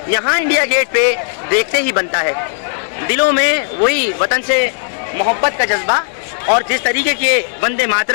यहाँ इंडिया गेट पे देखते ही बनता है। दिलों में वही वतन से मोहब्बत का जज्बा और जिस तरीके के वंदे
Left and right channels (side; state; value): right; silent; digital silence